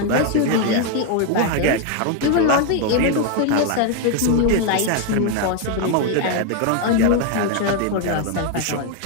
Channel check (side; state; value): both; different; correlation 0.01